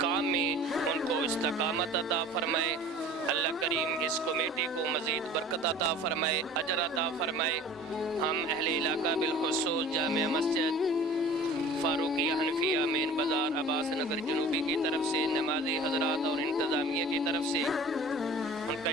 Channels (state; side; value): normal; both; correlation 0.43